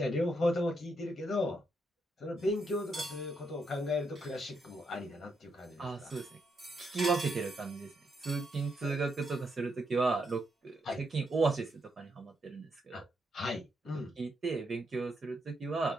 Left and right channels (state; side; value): normal; both; correlation 0.79